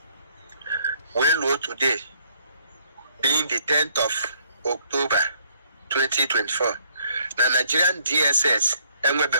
Well, low today being the 10th of October 2024. The Nigerian DSS and we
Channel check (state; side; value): inverted; both; correlation -0.65